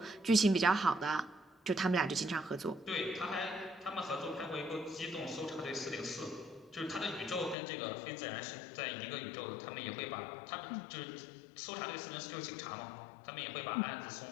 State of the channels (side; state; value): right; drops out; at 7.6 s